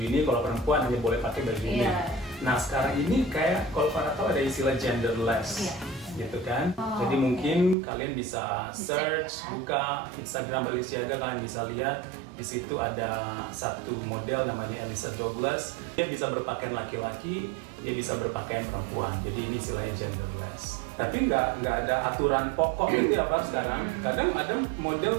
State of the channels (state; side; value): drops out; left; at 7.8 s